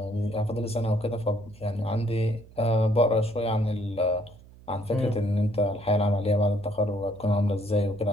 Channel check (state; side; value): noise; right; hum, 22 dB below the sound